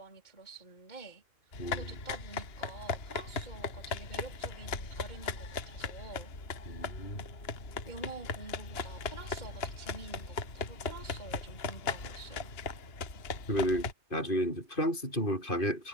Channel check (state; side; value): late; right; 2.8 ms